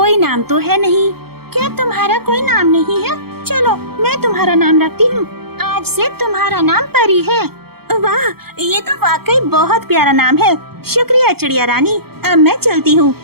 नाम तो है नहीं। क्या तुम्हारा कोई नाम नहीं है? चलो मैं तुम्हारा नाम रखती हूँ, आज से तुम्हारा नाम परी है। वाह, ये तो वाकई बहुत प्यारा नाम है। शुक्रिया चिड़िया रानी, अब मैं चलती हूँ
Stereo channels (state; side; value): late; left; 0.95 ms